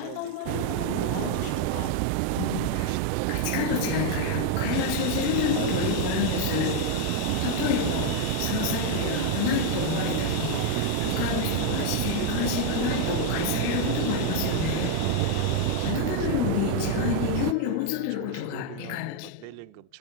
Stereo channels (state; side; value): different; both; correlation 0.01